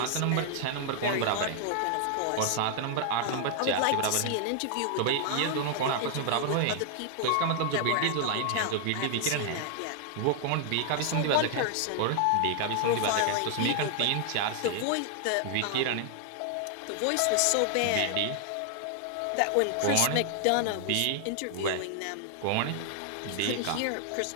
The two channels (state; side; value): different; both; correlation 0.00